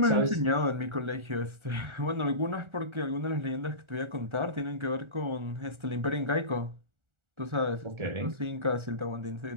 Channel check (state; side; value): late; left; 1.4 ms